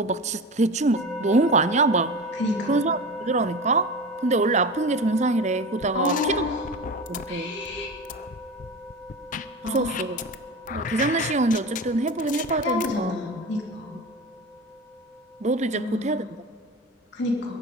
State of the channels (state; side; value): normal; both; correlation 0.29